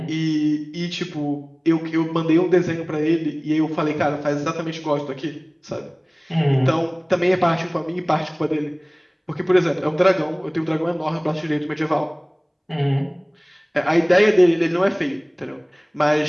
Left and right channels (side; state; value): both; identical; correlation 1.00